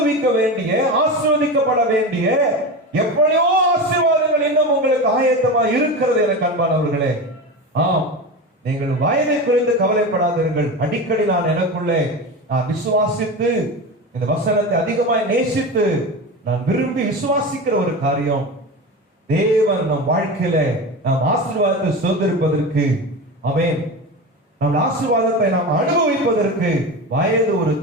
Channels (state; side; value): normal; both; correlation 0.25